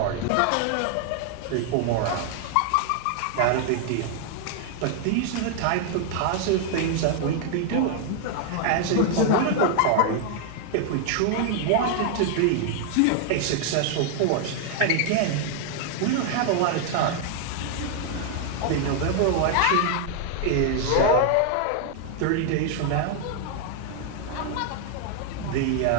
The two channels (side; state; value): both; different; correlation 0.00